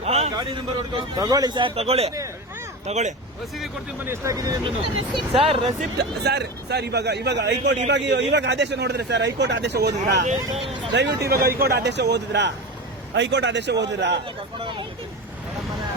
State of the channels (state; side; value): normal; both; correlation 0.25